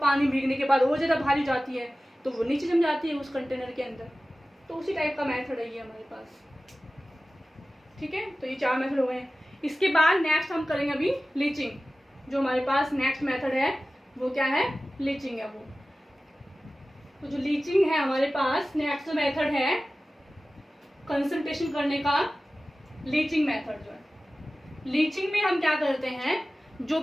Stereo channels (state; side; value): normal; both; correlation 0.96